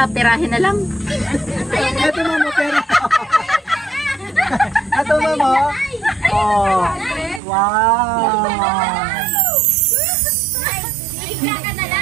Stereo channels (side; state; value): left; drops out; at 7.4 s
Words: pirahin na lang. Ito mamo, pero... Ito mamo. Oh. Wow. Hihiga ka na